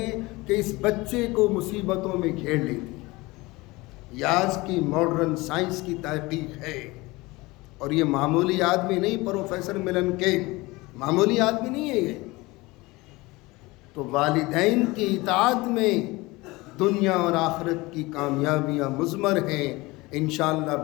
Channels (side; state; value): right; quieter; 22.2 dB